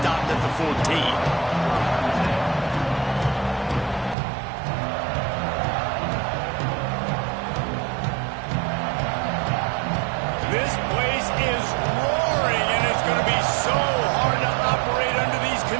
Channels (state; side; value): drops out; left; at 4.2 s